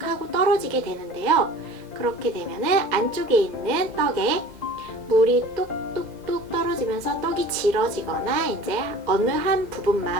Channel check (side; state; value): left; late; 1.9 ms